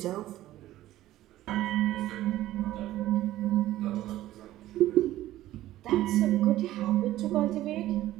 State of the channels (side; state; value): left; quieter; 14.7 dB